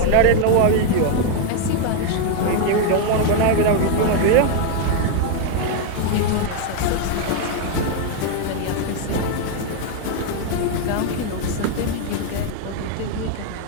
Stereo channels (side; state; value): both; different; correlation 0.00